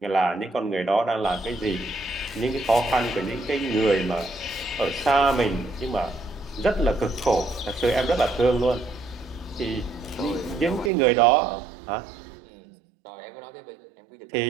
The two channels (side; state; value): left; drops out; at 10.9 s